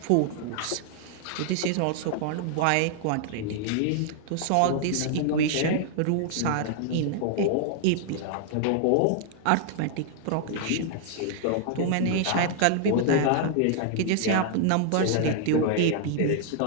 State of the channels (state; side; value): different; both; correlation 0.00